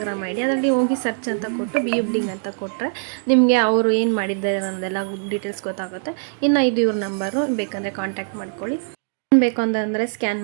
ಐಡಿ, ಅದರಲ್ಲಿ ಹೋಗಿ ಸರ್ಚ್ ಅಂತ ಕೊಟ್ಟು ಬಿ ಯು ಬ್ಲಿಂಗ್ ಅಂತ ಕೊಟ್ಟರೆ ನಿಮಗೆ ಅವರು ಏನು ಮಾಡಿದ್ದಾರೆ ಅನ್ನೋದೆಲ್ಲ ಡೀಟೇಲ್ಸ್ ಗೊತ್ತಾಗುತ್ತೆ. ಇನ್ನು ಇದು ಇವ್ರ ನಂಬರು, ಬೇಕಂದರೆ ಕಾಂಟ್ಯಾಕ್ಟ್ ಮಾಡ್ಕೊಳ್ಳಿ. ಬೇಕು ಅಂತಂದರೆ ಸ್ಕ್ಯಾನ್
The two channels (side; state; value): left; silent; digital silence